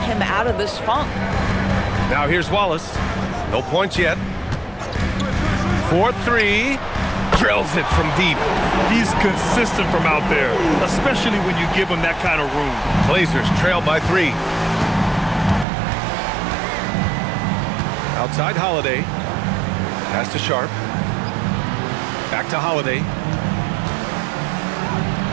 out of this funk. Now here's Wallace. No points yet. 4-3. Drills it from deep. He's consistent from out there, especially when you give him that kind of room. Blazers trail by 3. Outside Holiday. Pass to Sharp. Back to Holiday.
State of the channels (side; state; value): left; drops out; at 15.7 s